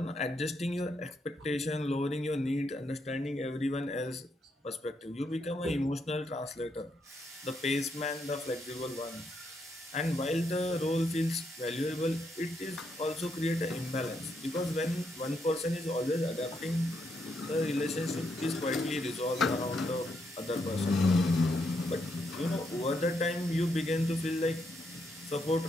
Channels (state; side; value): normal; both; correlation 0.78